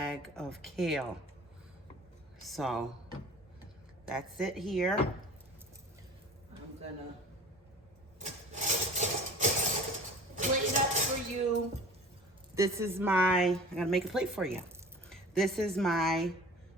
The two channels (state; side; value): normal; both; correlation 0.43